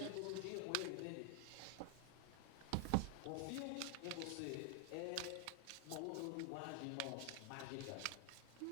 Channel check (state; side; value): different; both; correlation 0.00